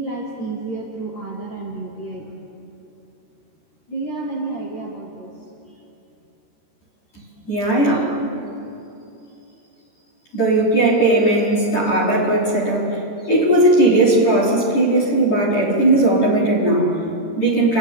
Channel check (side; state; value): right; late; 13 ms